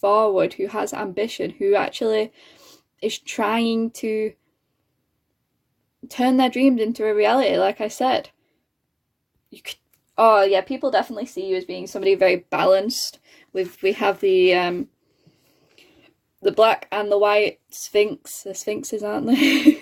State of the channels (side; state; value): both; identical; correlation 1.00